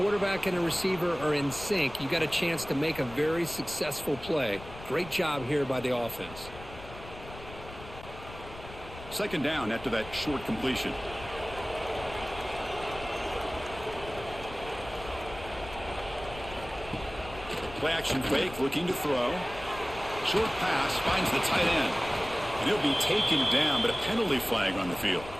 and a receiver are in sync, you got a chance to make a very successful play. Great job here by the offense. Second down after that short completion. Play action fake, looking to throw. Short pass finds the tight end. And he'll be taken down, but a penalty flag on the field.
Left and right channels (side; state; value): left; noise; rumble, 15 dB below the sound